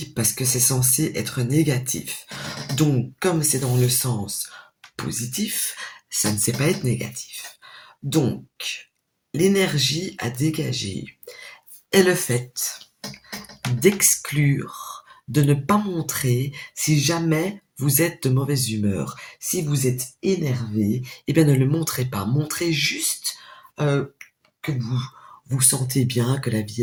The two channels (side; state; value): both; identical; correlation 1.00